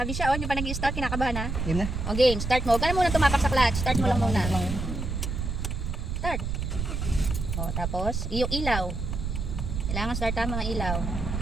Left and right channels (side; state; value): right; noise; rumble, 3 dB below the sound